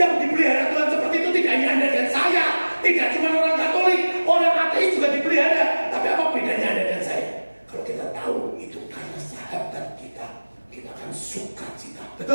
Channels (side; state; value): both; inverted; correlation -1.00